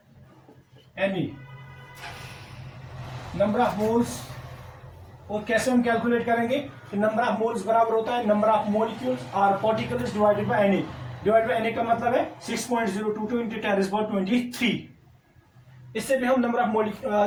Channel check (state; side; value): identical; both; correlation 1.00